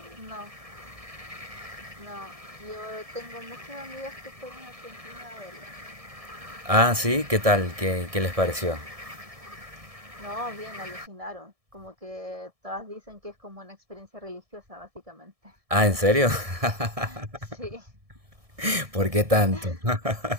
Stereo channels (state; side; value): late; left; 1.7 ms